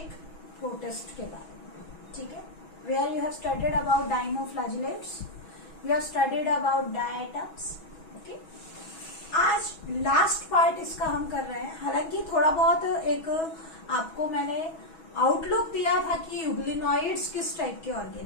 protist के बारे में, ठीक है? Where you have studied about dinoflagellates, you have studied about diatoms, okay? आज लास्ट पार्ट इसका हम कर रहे हैं. हालांकि थोड़ा बहुत एक आपको मैंने आउटलुक दिया था कि यूग्लिनॉइड्स किस टाइप के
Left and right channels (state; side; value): late; right; 6.2 ms